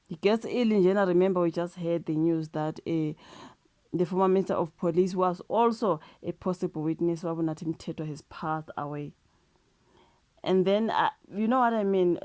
He gets ill in general. Remember, we just heard the news that the former Minister of Police was also a possible witness. Wabunathi Mthethwa has passed away. And then, you know what I mean?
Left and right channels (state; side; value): identical; both; correlation 1.00